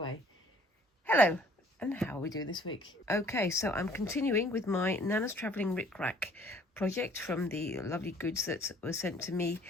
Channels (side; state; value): both; normal; correlation 0.57